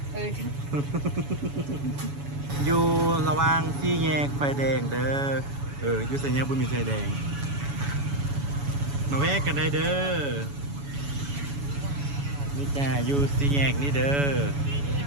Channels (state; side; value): late; left; 7.1 ms